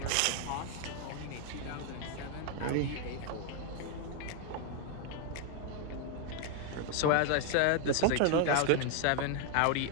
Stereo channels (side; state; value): both; different; correlation 0.01